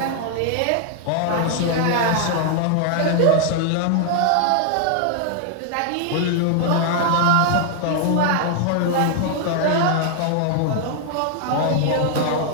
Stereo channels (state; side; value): different; both; correlation 0.00